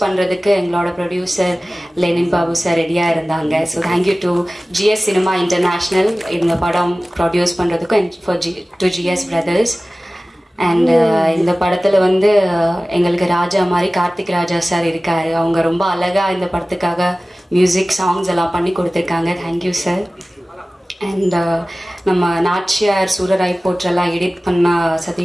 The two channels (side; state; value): both; normal; correlation 0.97